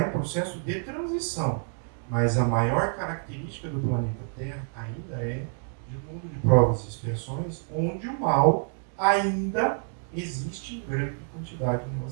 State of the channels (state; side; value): silent; left; 57 dB below the other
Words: em processo de transição. Mas a maior característica do planeta Terra ainda é de um mundo de provas e expiações, onde o mal ainda existe em grande quantidade em